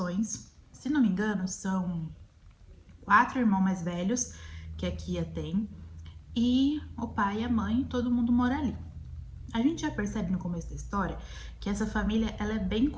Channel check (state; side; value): identical; both; correlation 1.00